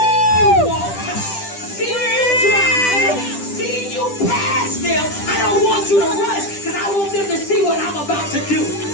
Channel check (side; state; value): right; late; 10 ms